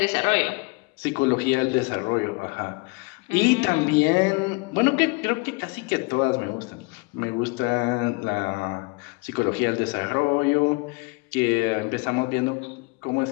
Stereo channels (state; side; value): quieter; right; 27.8 dB